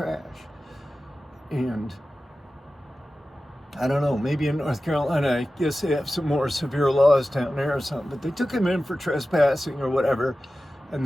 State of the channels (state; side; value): normal; both; correlation 0.95